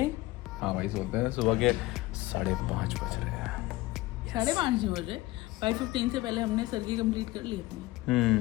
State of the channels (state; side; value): quieter; right; 18.9 dB